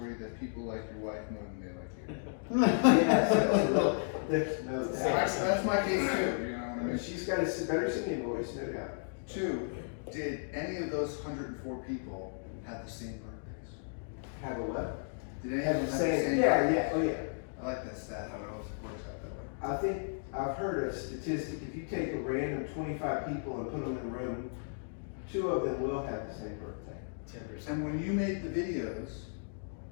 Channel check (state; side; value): silent; right; digital silence